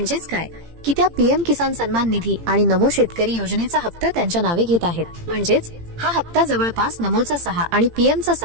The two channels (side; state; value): left; late; 18 ms